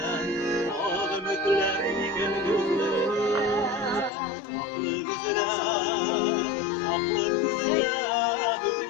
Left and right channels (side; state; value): right; drops out; at 4.1 s